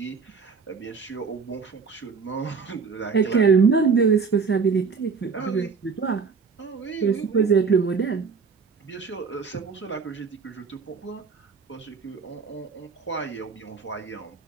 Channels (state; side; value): quieter; left; 5.3 dB